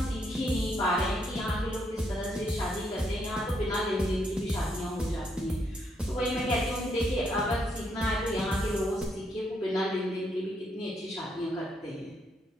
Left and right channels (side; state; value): both; normal; correlation 0.75